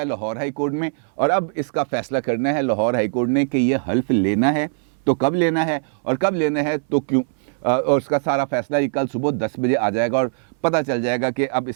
لاہور ہائی کورٹ میں، اور اب اس کا فیصلہ کرنا ہے لاہور ہائی کورٹ نے کہ یہ حلف لینا ہے تو کب لینا ہے، اور کب لینا ہے تو کیوں، اور اس کا سارا فیصلہ یہ کل صبح 10 بجے آ جائے گا، اور پتہ چل جائے گا کہ اب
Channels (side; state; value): left; silent; 63 dB below the other